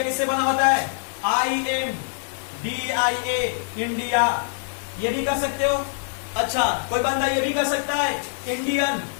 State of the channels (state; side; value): silent; right; 63 dB below the other